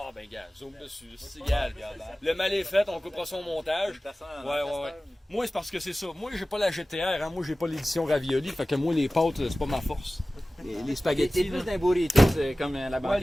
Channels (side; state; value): both; normal; correlation 0.97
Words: ben, gars, zoom dessus, c'est égal. Le mal est fait, on coupera son montage. Ouais. Moi, c'est parce que c'est ça. Moi, j'ai pas la GTR, hein. Moi, j'ai pas l'édition Ravioli, fait que moi, les pâtes, c'est pas ma force. Les T'es spaghettis. plus là. d'un burrito, c'est comme la Ouais, banquette